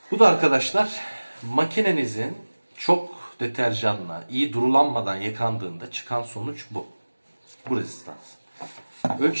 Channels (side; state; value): both; inverted; correlation -1.00